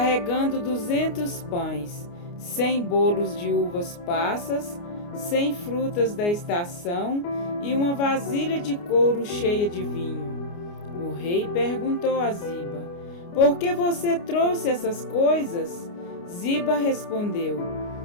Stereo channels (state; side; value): late; right; 29 ms